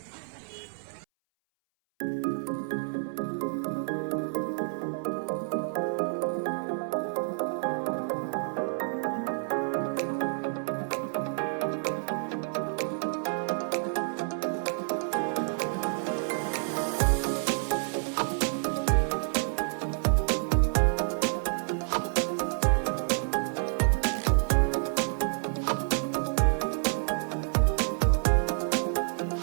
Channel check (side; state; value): left; silent; 59 dB below the other